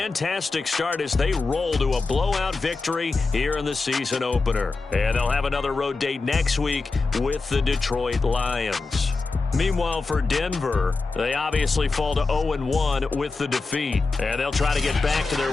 start as they roll to a blowout victory here in the season opener. And they'll have another road date next week with the Detroit Lions. Meanwhile, for Denver, they obviously fall to 0-1 with the defeat. And they'll try to get back to their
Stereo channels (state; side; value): quieter; right; 3.9 dB